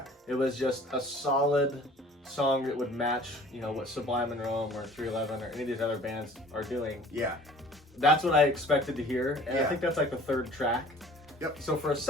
It was just a solid song that would match, what Sublime and Rome or 311 or any of these other bands are doing. Yeah. That's what I expected to hear, and I think that's like the third track. Yep. So for a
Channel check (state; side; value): normal; both; correlation 0.49